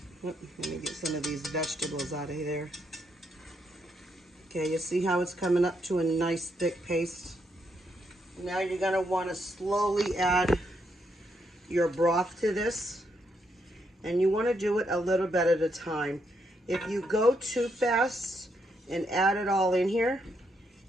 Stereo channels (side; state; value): both; normal; correlation 0.77